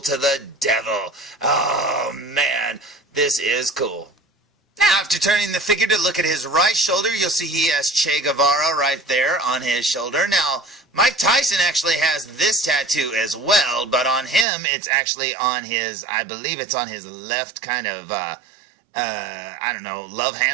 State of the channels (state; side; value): drops out; left; at 14.5 s